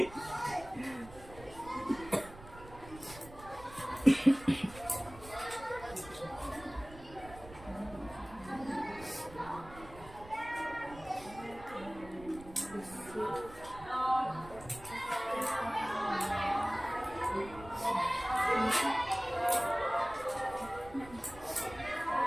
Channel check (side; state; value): right; noise; rumble, 18 dB below the sound